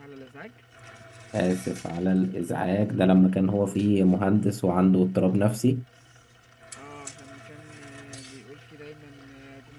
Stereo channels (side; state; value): both; identical; correlation 1.00